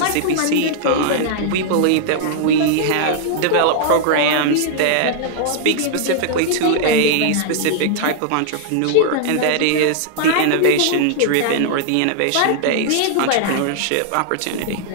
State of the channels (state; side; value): different; both; correlation -0.01